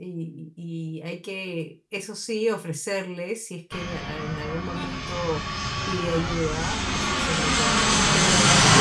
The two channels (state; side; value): identical; both; correlation 1.00